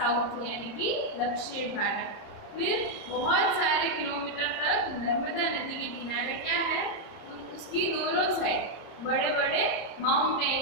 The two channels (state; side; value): late; right; 30 ms